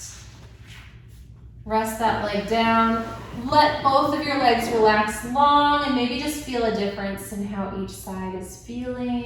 Rest that leg down. Let both of your legs relax long and maybe just feel a difference in how each side is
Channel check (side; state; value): both; identical; correlation 1.00